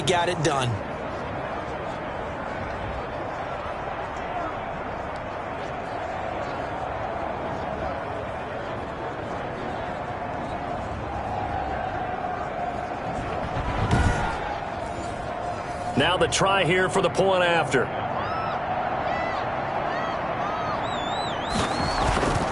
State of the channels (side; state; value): both; identical; correlation 1.00